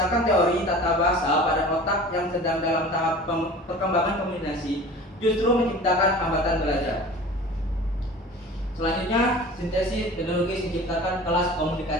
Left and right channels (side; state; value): both; normal; correlation 0.40